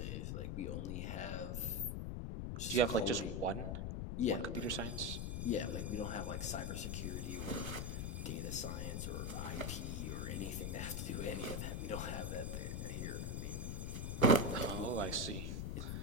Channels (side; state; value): left; noise; rumble, 2 dB below the sound